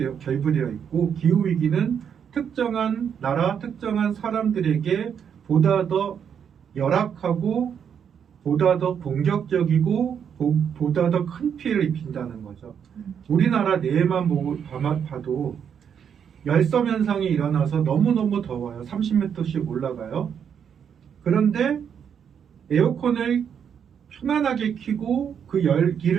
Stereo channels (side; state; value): left; quieter; 7.8 dB